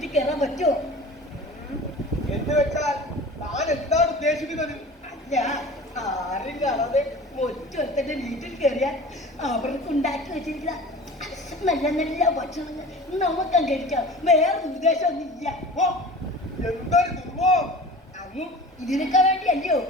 കയറാൻ പറ്റുമോ? എന്ന് വെച്ചാൽ താൻ എന്താണ് ഉദ്ദേശിക്കുന്നത്? അല്ല, ആരും കാണാതെ മറ്റൊരുത്തന്റെ വീട്ടിൽ കയറിയാൽ അവർക്ക് ഉണ്ടാക്കി വെച്ചിരിക്കുന്ന നല്ല നല്ല ഭക്ഷണങ്ങൾ നമുക്ക് കഴിക്കാം. വേറെ ഉദ്ദേശമൊന്നുമില്ല. ഓ, എന്തൊരു ദുർവം! അങ്ങ് ഇതിനൊക്കെ വേണ്ടിയല്ലയോ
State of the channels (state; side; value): normal; both; correlation 0.39